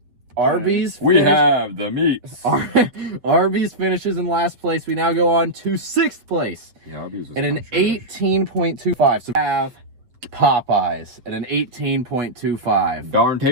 Arby's. We have the meats. Arby's finishes in last place. We now go on to 6th place Yeah, Arby's was at an kinda trash. 18.25. So we have Popeyes at an 18.25. Darn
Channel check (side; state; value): left; late; 7.9 ms